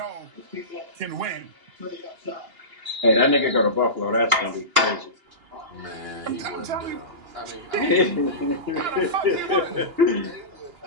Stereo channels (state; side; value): late; left; 2.8 ms